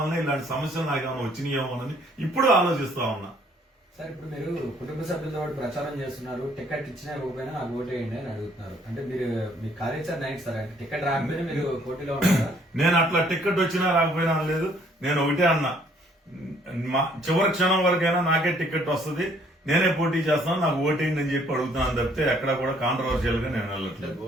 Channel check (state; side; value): normal; both; correlation 0.63